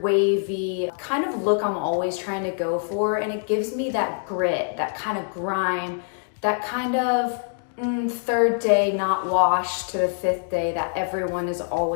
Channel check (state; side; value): silent; right; digital silence